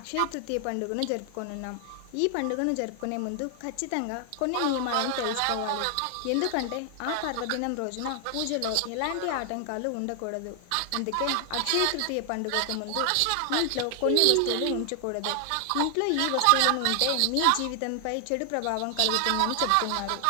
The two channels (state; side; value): different; both; correlation 0.00